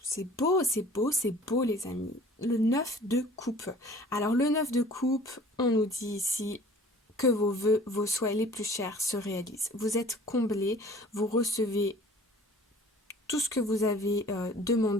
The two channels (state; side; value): normal; both; correlation 0.49